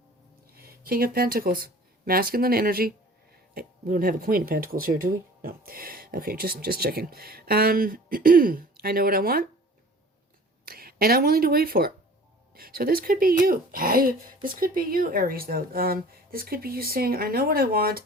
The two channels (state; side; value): normal; both; correlation 0.46